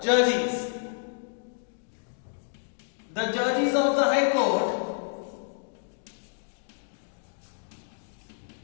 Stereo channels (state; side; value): silent; right; digital silence